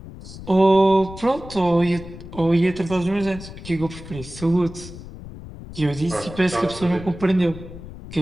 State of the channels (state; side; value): noise; left; rumble, 14 dB below the sound